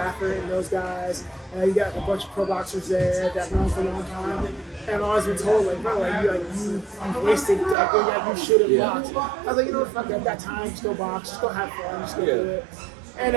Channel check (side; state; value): left; drops out; at 7.8 s